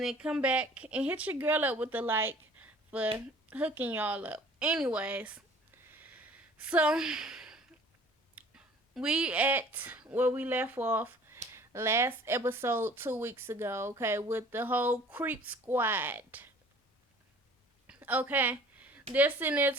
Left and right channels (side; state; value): both; normal; correlation 0.50